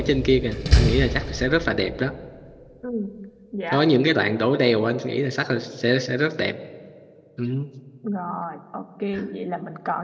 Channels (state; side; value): identical; both; correlation 1.00